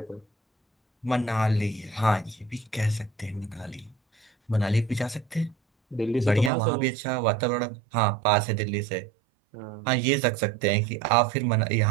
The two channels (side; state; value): left; drops out; at 6.5 s